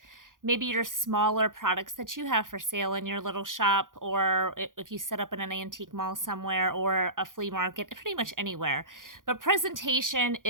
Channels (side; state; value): left; late; 0.89 ms